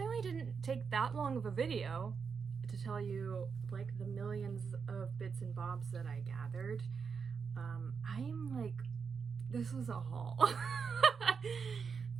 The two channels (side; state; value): left; quieter; 5.8 dB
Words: didn't take that long of a video to tell you like the millions of bits and bobs that I gathered. I'm like, this was a haul.